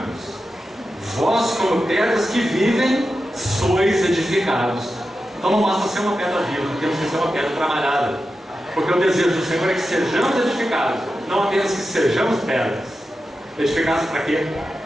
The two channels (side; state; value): both; normal; correlation 0.91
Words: Vós, como pedras que vivem, sois edificados. Então não basta ser uma pedra viva, temos que ser uma pedra trabalhada. Porque o desejo do Senhor é que sejamos edificados, não apenas que sejamos pedras. Edificados para quê?